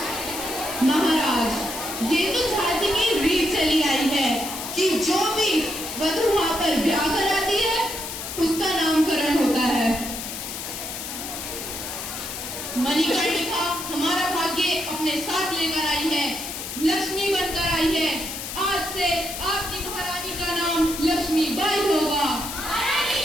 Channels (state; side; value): noise; left; hiss, 7 dB below the sound